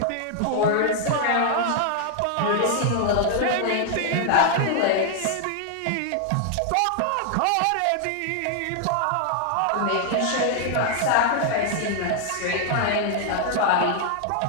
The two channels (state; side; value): different; both; correlation 0.00